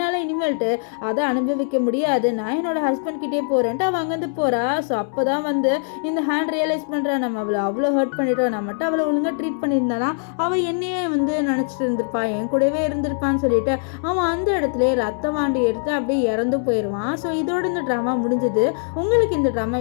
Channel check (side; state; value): right; silent; 64 dB below the other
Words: இனிமேல்ட்டு அதை அனுபவிக்க முடியாது, நான் என்னோட ஹஸ்பண்ட் கிட்டே போகிறேன்ட்டு அவள் அங்கேருந்து போகிறா. ஸோ அப்போ தான் வந்து இந்த ஹேண்ட் ரியலைஸ் பண்ணுறா, நம்ம அவளை அவ்வளோ ஹர்ட் பண்ணிட்டோம், நான் மட்டும் அவளை ஒழுங்காக ட்ரீட் பண்ணியிருந்தானா அவள் என்னையே வந்து நினச்சிட்டு இருந்திருப்பா, என் கூடவே இருந்திருப்பான்னு சொல்லிட்டு அவன் அந்த இடத்துல ரத்த வாண்டி எடுத்து அப்படியே இறந்து போயிடுவான். ஸோ இதோட இந்த ட்ராமா முடிஞ்சது. உங்களுக்கு இந்த ட்ராமா